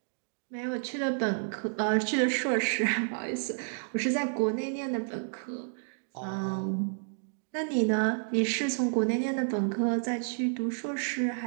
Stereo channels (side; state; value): left; silent; digital silence